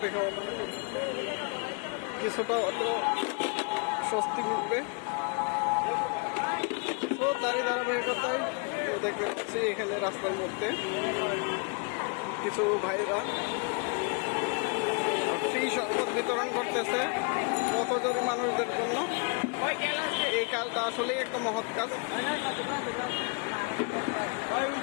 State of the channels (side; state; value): right; quieter; 35.5 dB